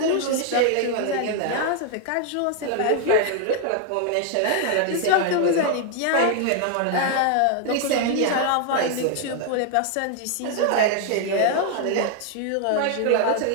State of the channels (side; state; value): both; different; correlation 0.00